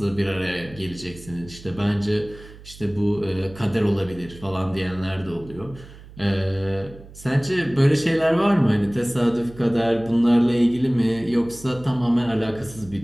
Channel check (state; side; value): noise; right; hum, 19 dB below the sound